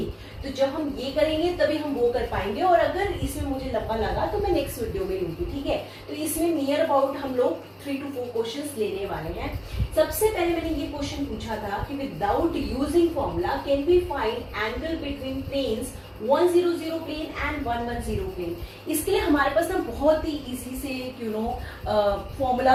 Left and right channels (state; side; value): identical; both; correlation 1.00